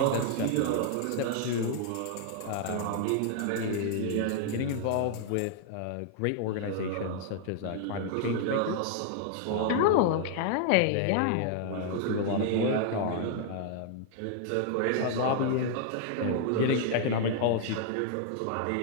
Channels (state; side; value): different; both; correlation 0.00